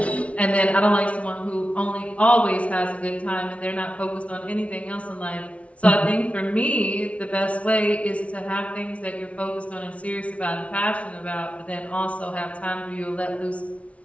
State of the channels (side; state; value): right; late; 0.064 ms